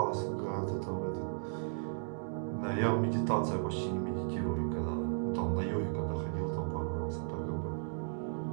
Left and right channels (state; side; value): silent; left; digital silence